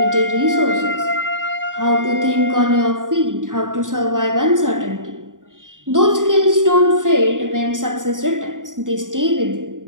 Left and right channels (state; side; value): late; left; 0.88 ms